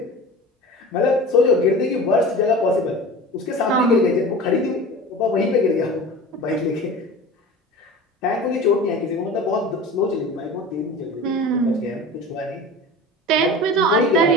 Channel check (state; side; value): normal; both; correlation 0.36